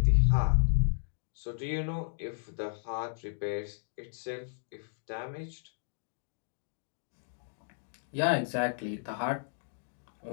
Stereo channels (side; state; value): right; silent; digital silence